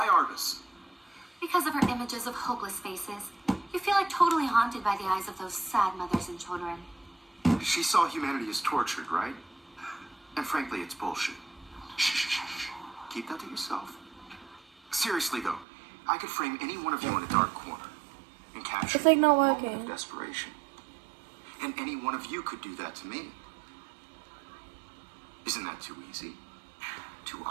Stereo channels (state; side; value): drops out; left; at 15.7 s